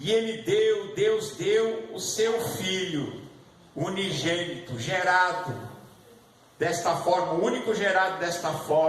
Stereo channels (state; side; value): identical; both; correlation 1.00